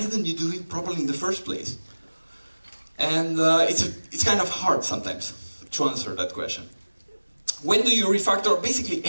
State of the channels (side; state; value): both; inverted; correlation -1.00